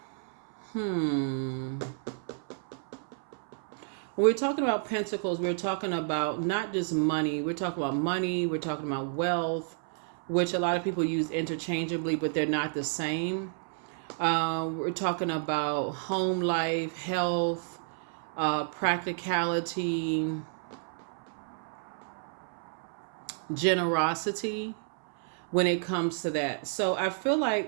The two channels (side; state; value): left; silent; 57 dB below the other